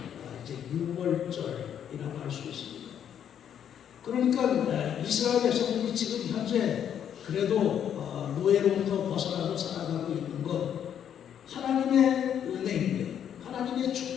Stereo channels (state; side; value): quieter; right; 9.2 dB